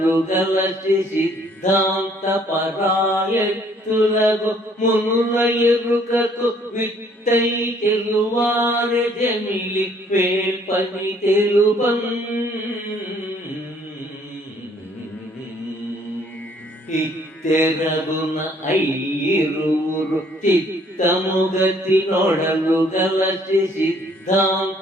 గలచి సిద్ధాంత పరాయత్తులకు మునుల ఎరుకకు విట్టై తెలువారె జమిలి వేల్పని తెలుపం. ఇత్తెరగున ఐరువురు చిత్తముగతి నొడలు గలచి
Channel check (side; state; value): both; normal; correlation 0.62